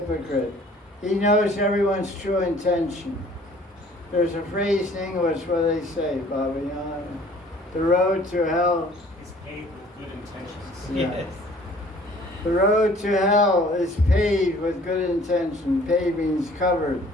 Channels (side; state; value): both; normal; correlation 0.54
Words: He knows everyone's true intention. There's a phrase in English where they say, Baba, you know, the road to hell is paved with good intentions. Yeah. Yes. The road to hell is paved with good intention. Paved means covered.